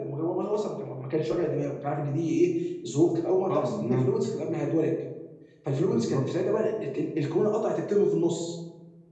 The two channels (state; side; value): identical; both; correlation 1.00